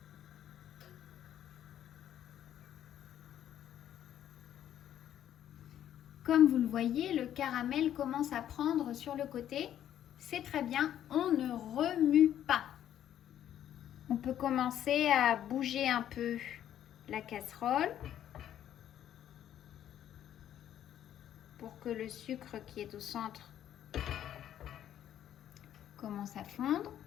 Comme vous le voyez, le caramel commence à prendre sur le côté. C'est très bien, on ne remue pas. On peut commencer à bouger un peu la casserole pour que le sucre qui est au centre commence à fondre.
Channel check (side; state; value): right; quieter; 10.9 dB